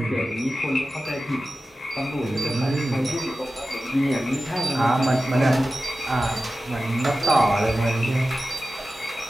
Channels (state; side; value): normal; both; correlation 0.94